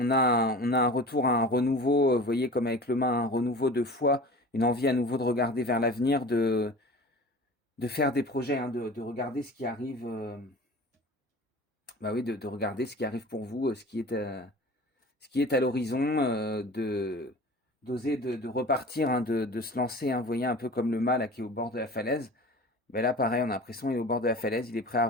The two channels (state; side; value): normal; both; correlation 0.39